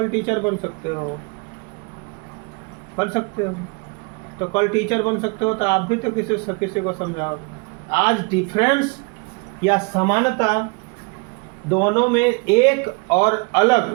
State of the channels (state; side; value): quieter; left; 30.9 dB